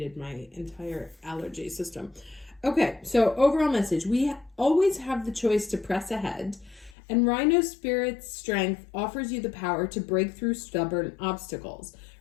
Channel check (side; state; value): right; drops out; at 7.0 s